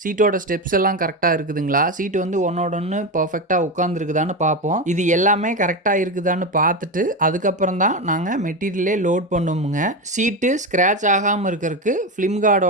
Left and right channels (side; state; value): both; normal; correlation 0.16